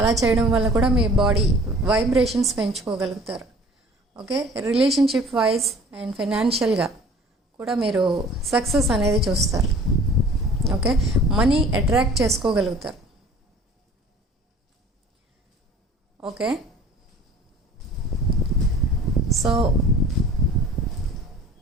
చేయడం వల్ల కూడా మీ బాడీ వైబ్రేషన్స్ పెంచుకోగలుగుతారు. ఓకే, రిలేషన్షిప్ వైజ్ అండ్ ఫైనాన్షియల్గా కూడా మీరు సక్సెస్ అనేది చూస్తారు. ఓకే, మనీ అట్రాక్ట్ చేసుకోగలుగుతారు. Okay, so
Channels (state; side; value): normal; both; correlation 0.48